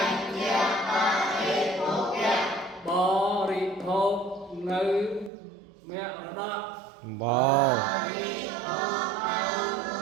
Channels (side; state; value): left; drops out; at 5.3 s